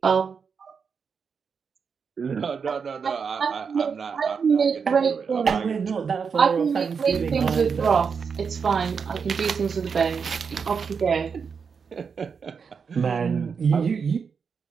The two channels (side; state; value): left; quieter; 6.0 dB